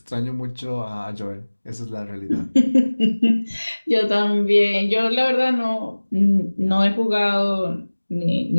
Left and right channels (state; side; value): inverted; both; correlation -1.00